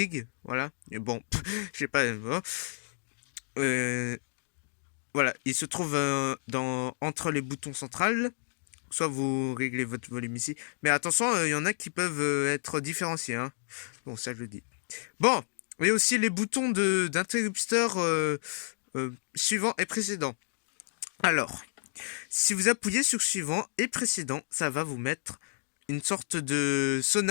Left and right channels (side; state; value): right; silent; digital silence